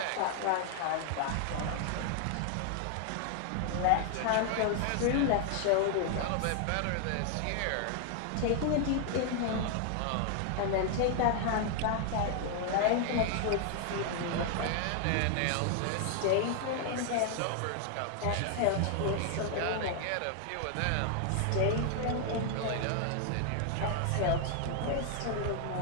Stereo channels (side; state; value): both; different; correlation 0.00